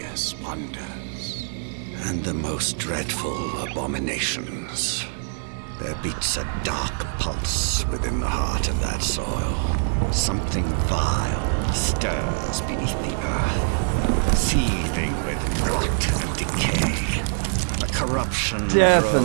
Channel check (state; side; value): silent; left; digital silence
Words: wonders and the most dreadful abominations. There beats a dark pulse within the heart of that soil. Something vile stirs beneath the earth, seething with rot and decay. A corruption